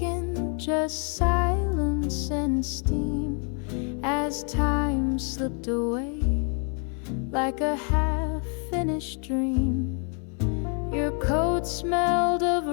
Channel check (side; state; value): right; quieter; 39.9 dB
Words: just silence and steam, as time slipped away like a half-finished dream. Your coat smelled of